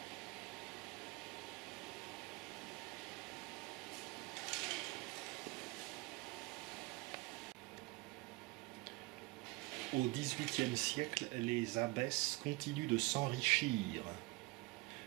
Au XVIIIe siècle, les abbesses continuent de s'enrichir.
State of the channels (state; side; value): quieter; left; 24.0 dB